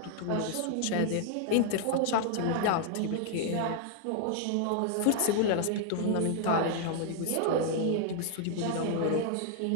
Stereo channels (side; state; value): both; different; correlation 0.00